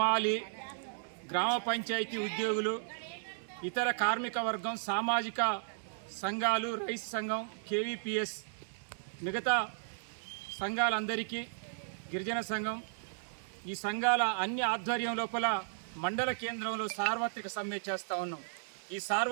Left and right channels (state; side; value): silent; left; digital silence